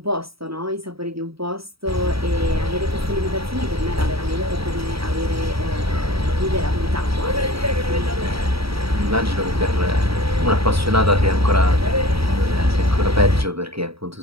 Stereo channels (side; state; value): left; late; 0.76 ms